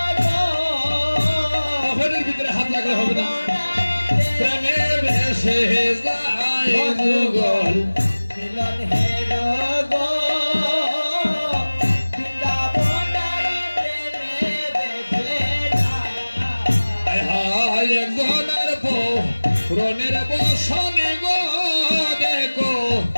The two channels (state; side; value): inverted; both; correlation -1.00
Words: যুগল মিলন হেরো গো বৃন্দাবনারি প্রেমে বেঁচে যায় হায় একজনের রনের বসনে গো দেখো